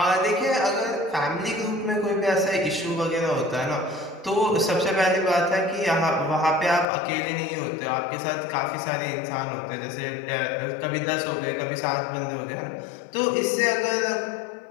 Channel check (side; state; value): right; drops out; at 6.9 s